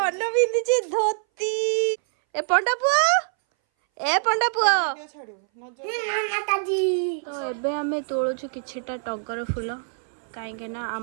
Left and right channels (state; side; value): silent; left; 60 dB below the other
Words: पिंधि धोती ए पंडा पुआ तो एबे आमे तोलुछु किछिटा टगर फूल कहीं ना